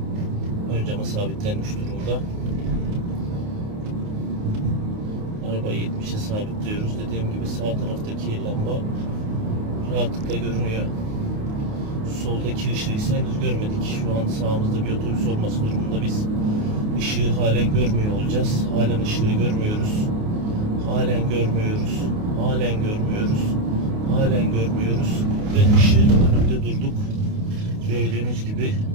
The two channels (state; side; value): late; left; 28 ms